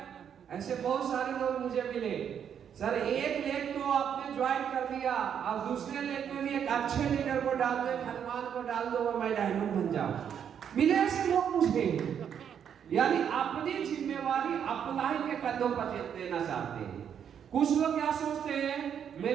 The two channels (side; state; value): left; quieter; 8.4 dB